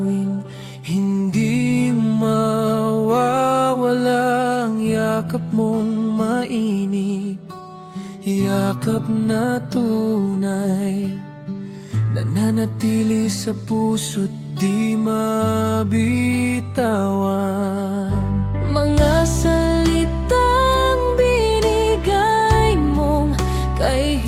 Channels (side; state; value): both; identical; correlation 1.00